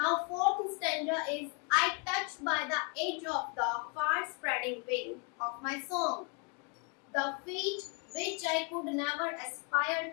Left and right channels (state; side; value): quieter; right; 34.6 dB